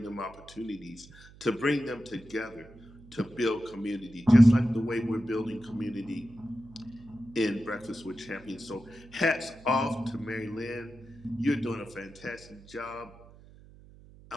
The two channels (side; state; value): right; noise; hum, 22 dB below the sound